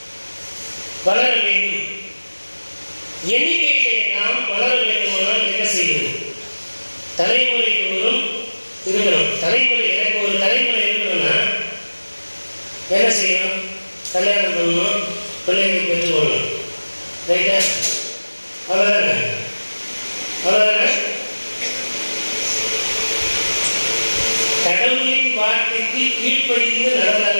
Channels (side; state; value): both; inverted; correlation -1.00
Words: வளர வேண்டும். எண்ணிக்கையிலே நாம் வளர வேண்டுமானால் என்ன செய்யணும்? தலைமுறை தோறும் இருக்கணும். தலைமுறை, எனக்கு ஒரு தலைமுறை இருக்கணும்னா என்ன செய்யணும்? கல்யாணம் பண்ணணும், பிள்ளைகளை பெற்றுக்கொள்ளணும். ரைட்டா? அவ்வளோதானே? அவ்வளோதானே? கடவுளின் வார்த்தைக்கு கீழ்ப்படிந்து